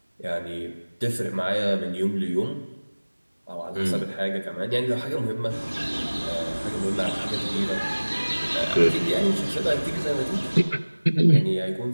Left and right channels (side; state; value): both; inverted; correlation -1.00